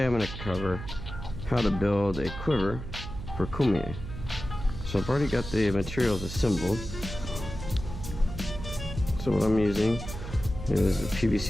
I'm going to cover how to build a quiver for Kummooyeh. So I've already got the materials assembled. So what I'm using is a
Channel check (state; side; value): noise; right; hum, 9 dB below the sound